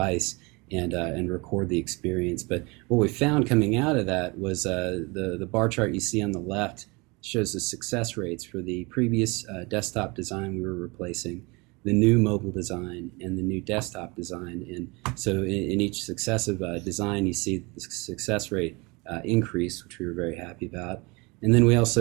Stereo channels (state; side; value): quieter; left; 26.8 dB